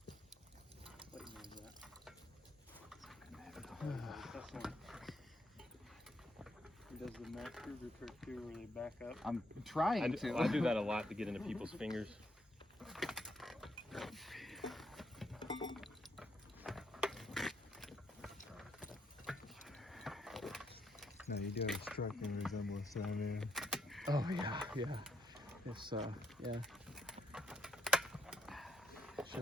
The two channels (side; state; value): both; normal; correlation 0.75